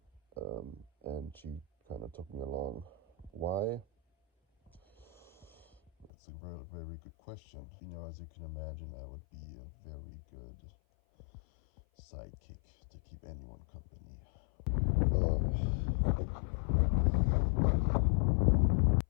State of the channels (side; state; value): right; drops out; at 6.1 s